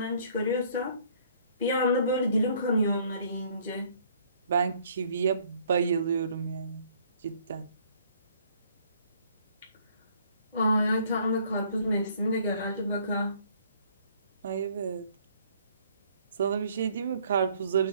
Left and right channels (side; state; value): both; inverted; correlation -0.60